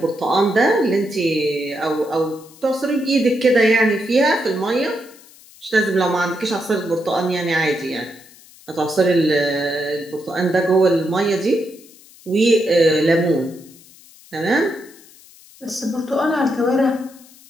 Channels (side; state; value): left; noise; hiss, 24 dB below the sound